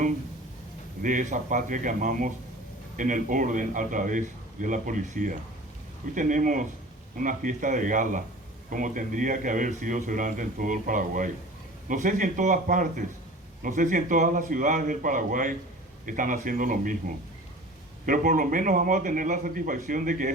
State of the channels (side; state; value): both; normal; correlation 0.41